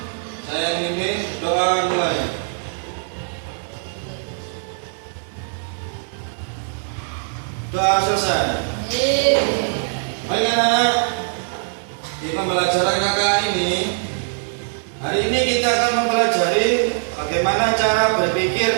Saya mimpin doa mulai. Doa selesai. Baik anak-anak, di pembelajaran kakak ini, hari ini kita akan mempelajari bagaimana cara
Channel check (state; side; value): silent; left; 63 dB below the other